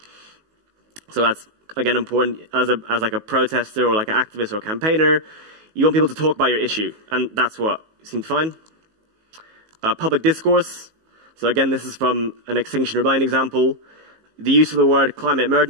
So that's, again, important as like a protester or like an activist or a campaigner. You want people to talk about your issue, and that's what you seem to find. Public discourse. So again, this is from an Extinction Rebellion example. The use of the word climate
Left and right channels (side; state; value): left; late; 19 ms